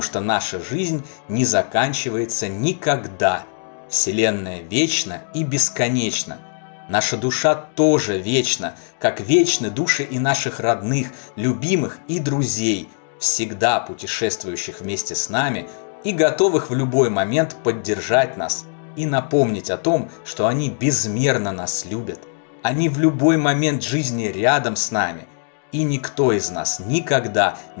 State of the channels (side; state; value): right; silent; 65 dB below the other